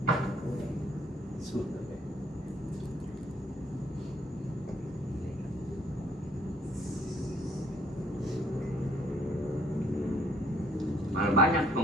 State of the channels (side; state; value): both; normal; correlation 0.64